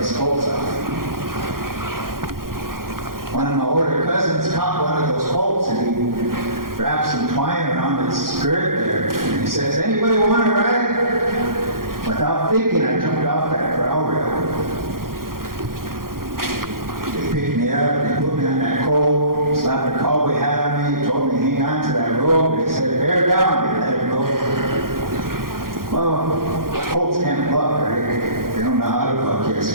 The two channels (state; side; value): late; left; 0.92 ms